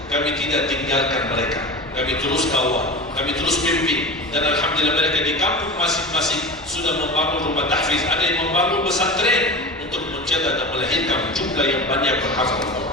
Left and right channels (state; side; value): normal; both; correlation 0.30